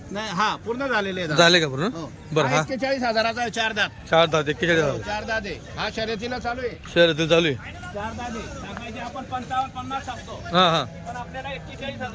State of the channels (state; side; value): identical; both; correlation 1.00